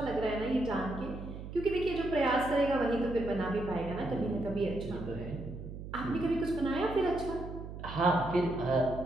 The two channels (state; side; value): noise; right; hum, 10 dB below the sound